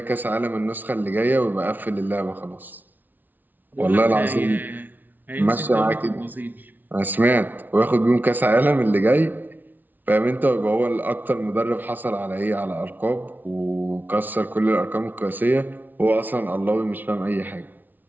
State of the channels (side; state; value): left; late; 0.085 ms